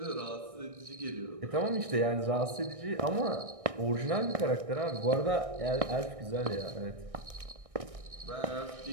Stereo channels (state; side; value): late; left; 1.6 ms